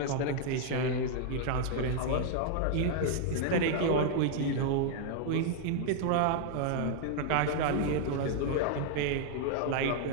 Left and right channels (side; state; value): both; different; correlation 0.00